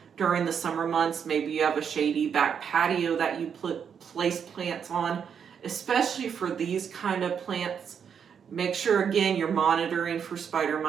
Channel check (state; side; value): quieter; left; 7.4 dB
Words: during the summer months, maybe you have a shady back patio that you place plants on, especially for these kind of plants, make sure again you're monitoring for spider